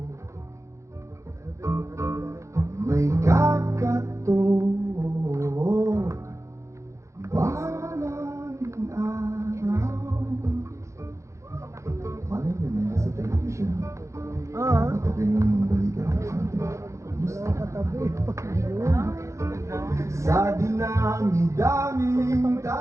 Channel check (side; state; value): left; late; 0.14 ms